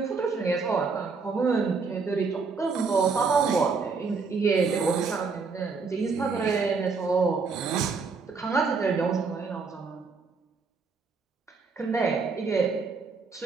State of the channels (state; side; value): quieter; left; 4.8 dB